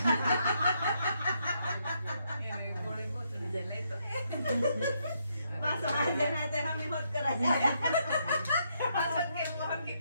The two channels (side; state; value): both; inverted; correlation -0.76